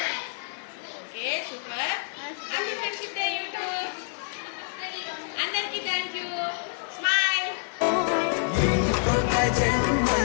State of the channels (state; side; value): silent; right; 60 dB below the other